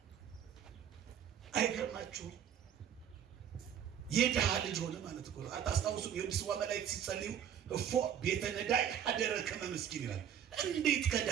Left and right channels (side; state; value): left; quieter; 9.1 dB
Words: አይገርማችሁ? የድሃ ልጅ ሆነ ማለት እኮ ነው። አታስታውሱም? የድስዋ መላእክት ሲጸልዩ እፎ ቤተ ነዳይ አደረ ከመ ምስኪን ይላል። እንዴት